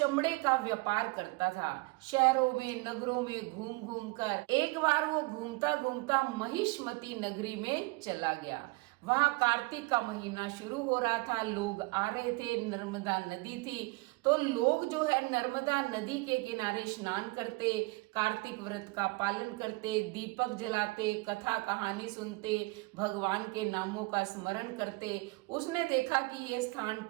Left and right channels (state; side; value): quieter; left; 25.1 dB